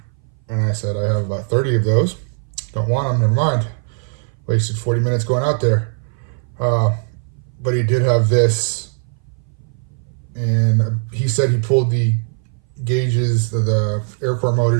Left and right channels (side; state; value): left; silent; 60 dB below the other